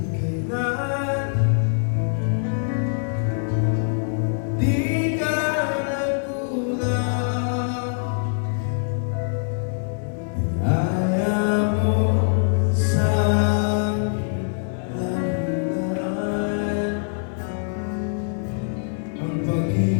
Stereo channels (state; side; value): silent; right; digital silence